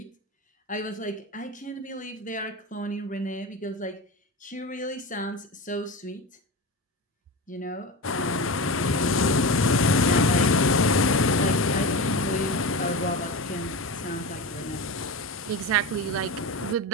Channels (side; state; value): both; normal; correlation 0.24